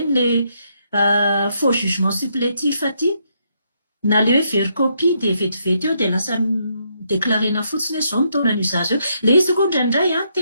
le faux jugement supplétif aty, na le hoe vericopie dia vetivety eo dia lasa déclarena fotsiny hoe izao nitaona an'io zaza eo. Le izy koa indraindray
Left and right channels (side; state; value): both; inverted; correlation -0.76